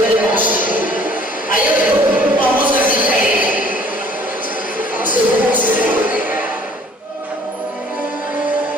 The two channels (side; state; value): both; normal; correlation 0.56